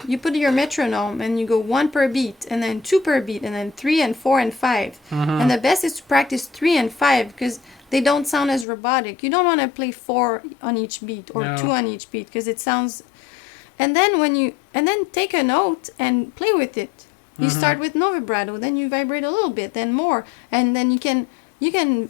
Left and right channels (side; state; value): right; drops out; at 8.7 s